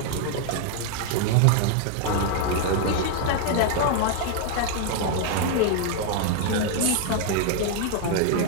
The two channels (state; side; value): different; both; correlation 0.00